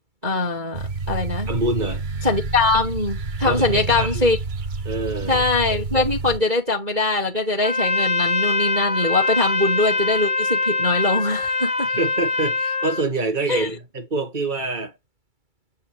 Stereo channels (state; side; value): late; left; 2.3 ms